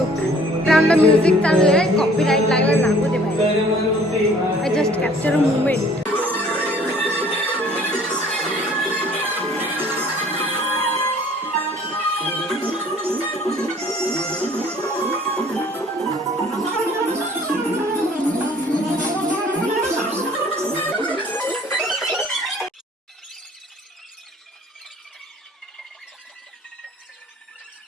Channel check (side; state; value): both; normal; correlation 0.54